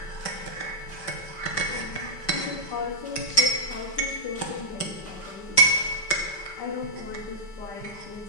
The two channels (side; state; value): right; late; 5.2 ms